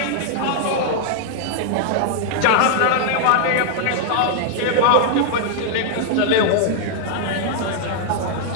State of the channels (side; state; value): both; different; correlation -0.01